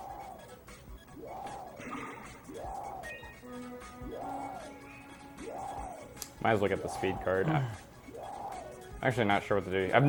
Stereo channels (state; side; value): identical; both; correlation 1.00